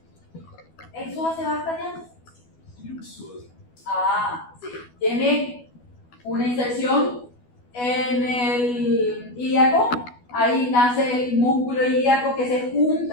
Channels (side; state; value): right; late; 12 ms